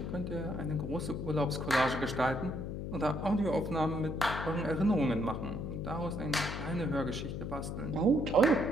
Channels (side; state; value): left; noise; hum, 5 dB below the sound